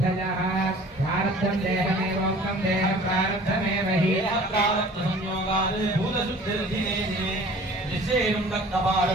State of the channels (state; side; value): normal; both; correlation 0.48